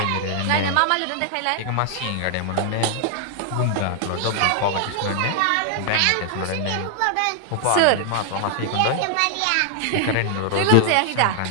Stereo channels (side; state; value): both; different; correlation 0.00